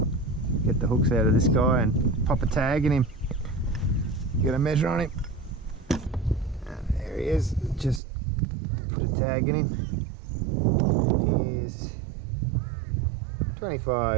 get the hooks out of this guy and pop a tag in him. Get a measure on him. And there he is. Just put a tag in him. He's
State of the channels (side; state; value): left; drops out; at 8.0 s